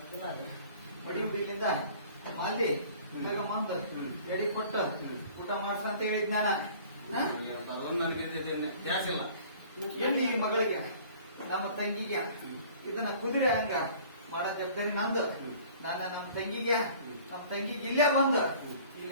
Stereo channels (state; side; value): inverted; both; correlation -0.49